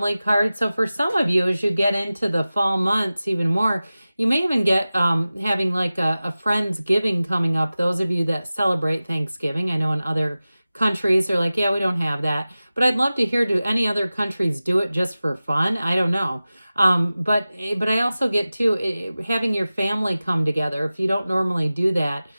card. So for some of you, as you get into the fall months even more, you may even get having like a Friendsgiving coming up. Those of you that celebrate Thanksgiving, I know in other countries are like, yeah, we don't have that. But I'd love to hear, do any other countries do it just for fun? I don't know. But I also get to having your family come together. If you don't normally do that,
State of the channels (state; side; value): inverted; both; correlation -0.96